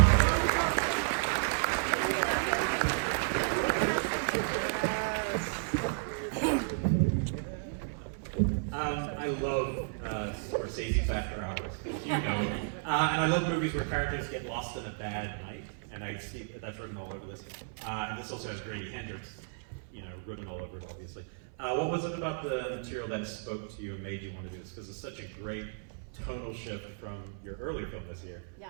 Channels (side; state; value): left; silent; 56 dB below the other